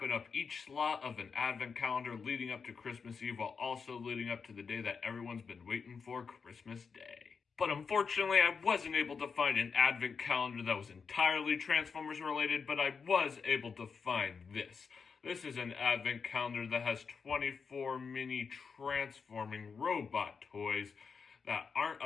up each slot of an advent calendar leading up to Christmas Eve while also leading up to the day that everyone's been waiting for, Christmas Day. But unfortunately, I wasn't able to find an advent calendar that was entirely Transformers related, but I was able to find this. This is an advent calendar that has 24 mini transforming robot toys that aren't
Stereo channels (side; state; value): right; quieter; 5.6 dB